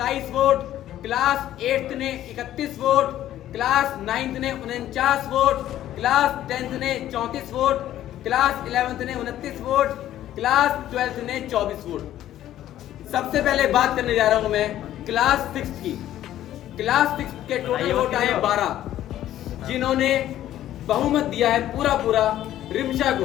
वोट, क्लास 8 ने 31 वोट, क्लास 9 ने 49 वोट, क्लास 10 ने 34 वोट, क्लास 11 ने 29 वोट, क्लास 12 ने 24 वोट। सबसे पहले बात करने जा रहा हूं मैं क्लास 6 की। क्लास 6 के टोटल वोट आए 12, जिन्होंने बहुमत दिया है पूरा रिमशा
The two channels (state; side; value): quieter; right; 12.7 dB